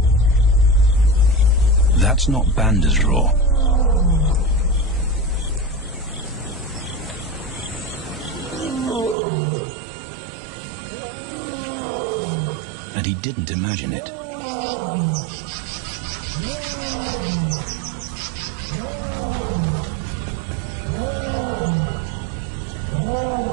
That's not Banda's roar. And he didn't imagine it.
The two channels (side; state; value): left; drops out; at 9.2 s